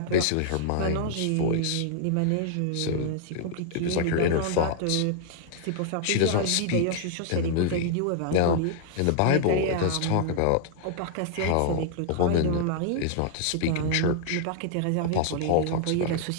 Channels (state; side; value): different; both; correlation -0.01